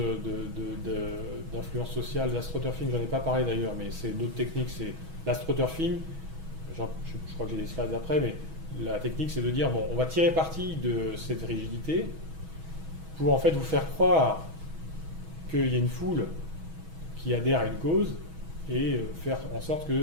d'influence sociale, d'astroturfing, j'en ai pas parlé d'ailleurs, mais c'est d'autres techniques, c'est l'astroturfing, je crois que j'ai des slides après, mais la technique c'est de dire, bon, on va tirer parti de cette rigidité pour en fait vous faire croire qu'il y a une foule qui adhère à une cause et faire en sorte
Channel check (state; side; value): late; left; 6.2 ms